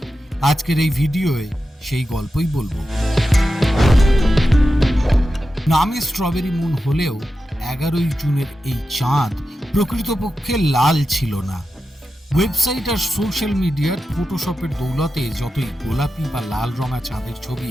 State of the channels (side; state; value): both; normal; correlation 0.91